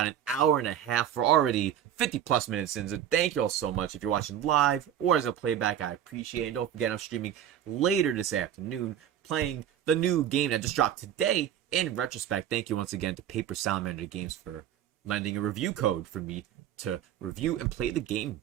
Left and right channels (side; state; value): left; quieter; 10.3 dB